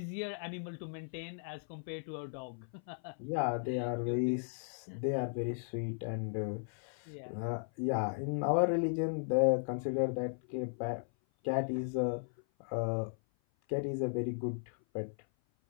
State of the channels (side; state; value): right; silent; 54 dB below the other